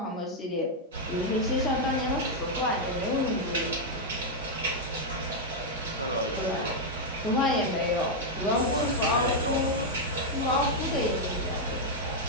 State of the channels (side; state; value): both; normal; correlation -0.01